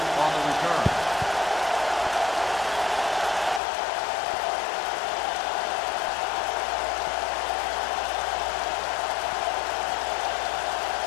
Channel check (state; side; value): drops out; right; at 3.6 s